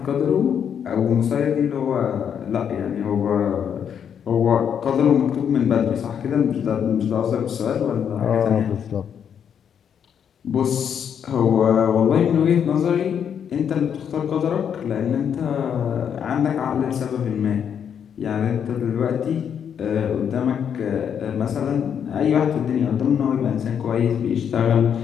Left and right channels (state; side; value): quieter; right; 8.1 dB